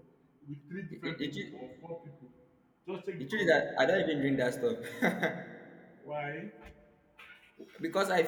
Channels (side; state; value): both; identical; correlation 1.00